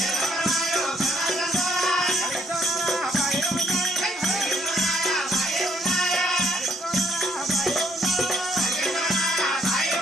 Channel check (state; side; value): normal; both; correlation 0.68